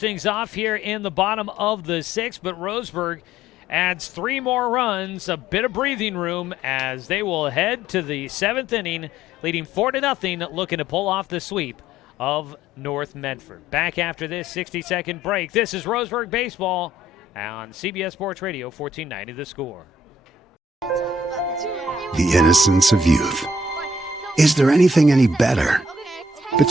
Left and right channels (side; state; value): both; normal; correlation 0.62